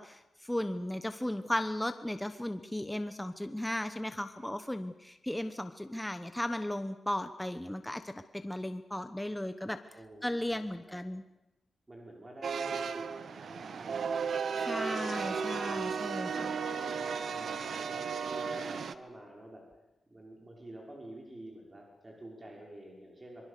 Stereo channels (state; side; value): normal; both; correlation 0.91